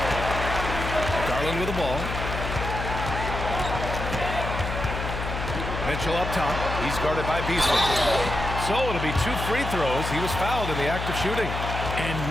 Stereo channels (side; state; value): left; noise; hum, 4 dB below the sound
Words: Garland with the ball. Mitchell up top. He's guarded by Beasley. So it'll be 2 free throws. He was fouled in the act of shooting. And